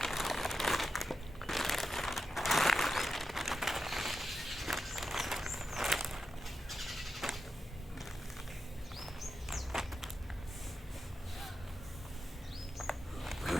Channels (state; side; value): normal; both; correlation 0.89